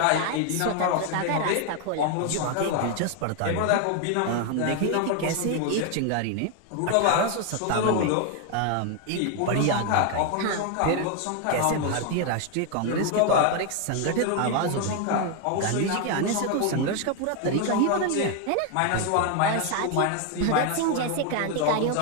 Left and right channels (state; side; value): different; both; correlation 0.01